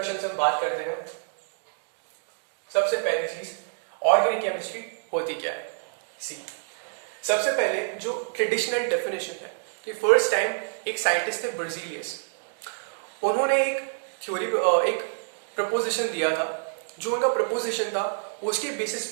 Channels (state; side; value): silent; left; digital silence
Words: से हम बात करते हैं। सबसे पहली चीज ऑर्गेनिक केमिस्ट्री होती क्या है। सी सबसे पहले जो ट्रेडिशनल डेफिनेशन है कि फर्स्ट टाइम एक साइंटिस्ट थे बर्जीलियस, उन्होंने एक थ्योरी एक प्रपोजिशन दिया था। जो उनका प्रपोजिशन था उसके बेसिस